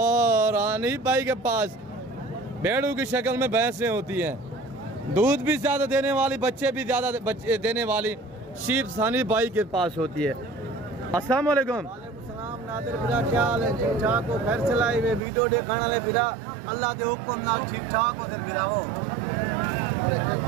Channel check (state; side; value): drops out; left; at 15.2 s